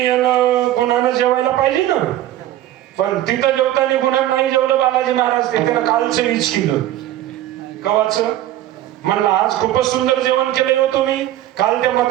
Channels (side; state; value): left; quieter; 13.5 dB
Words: गुणानं जेवायला पाहिजे ना, पण तिथं जेवताना गुणानं नाही जेवलं बालाजी महाराज. ते त्यानं कालचं वीज केलं. कवाचं? म्हणलं आज खूपच सुंदर जेवण केलंय हो तुम्ही. काल त्या